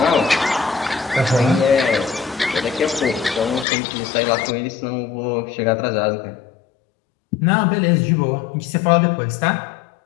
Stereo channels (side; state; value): right; drops out; at 3.7 s